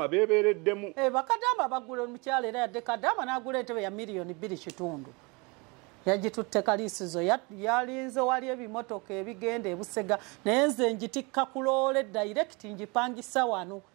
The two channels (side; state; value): left; quieter; 28.3 dB